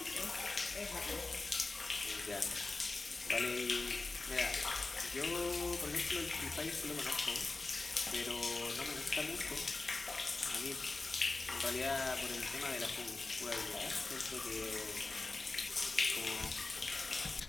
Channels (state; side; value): quieter; right; 3.5 dB